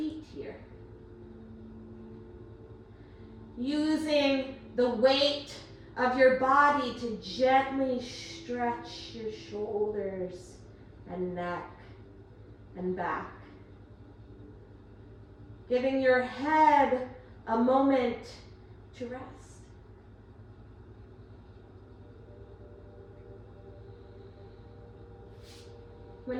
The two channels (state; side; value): identical; both; correlation 1.00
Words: here. Using the weight of your body to gently stretch your shoulders and neck and back. Giving your head a moment to rest. When